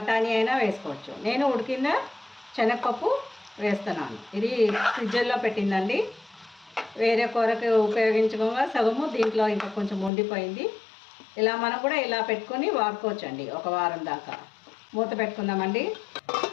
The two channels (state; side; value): drops out; right; at 10.1 s